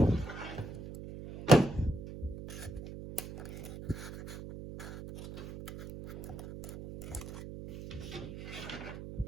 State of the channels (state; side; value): noise; right; hum, 11 dB below the sound